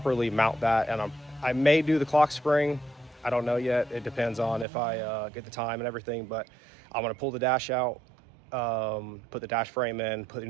mount that, and I may do the clock spring. I don't know yet. It depends on if I get the time and everything, but I'm gonna pull the dash out, put the dash frame in, put an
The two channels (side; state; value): left; drops out; at 4.7 s